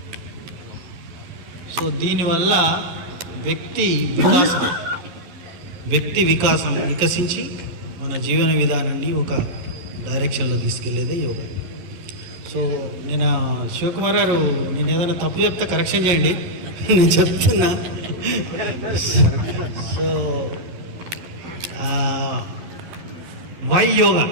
సో దీనివల్ల వ్యక్తి వికాసం వికసించి మన జీవన విధానాన్ని ఒక డైరెక్షన్లో తీసుకెళ్లేదే యోగా. సో నేను శివకుమార్ గారు, నేను ఏదైనా తప్పు చెప్తే కరెక్షన్ చేయండి, నేను చెప్తున్నా. So why yoga?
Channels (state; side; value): late; left; 11 ms